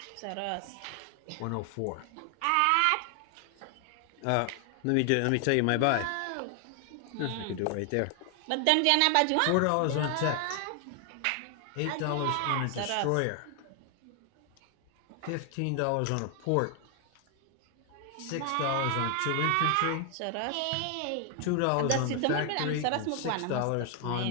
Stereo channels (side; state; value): both; different; correlation 0.00